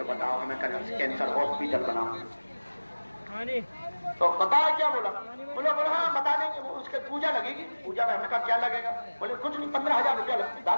बताओ हमें, कैंसर हॉस्पिटल बनाओ। तो पता है क्या बोला। बोला हाँ बता देंगे, वो उसके पूजा लगेगी। पूजा में हमने कहा क्या लगेगा। बोले कुछ नहीं, 15,000 रुपया लगता।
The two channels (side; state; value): both; inverted; correlation -1.00